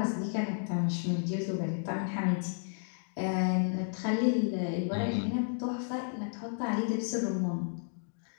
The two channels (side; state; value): right; silent; digital silence